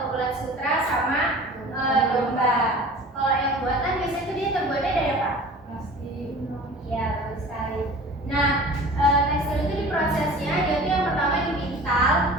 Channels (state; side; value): normal; both; correlation 0.41